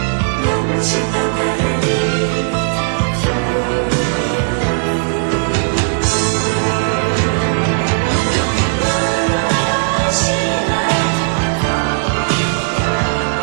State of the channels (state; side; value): silent; left; digital silence